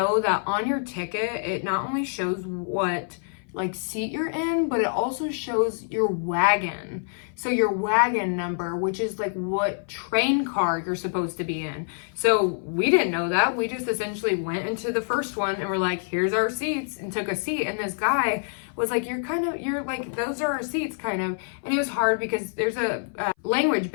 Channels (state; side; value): silent; right; 57 dB below the other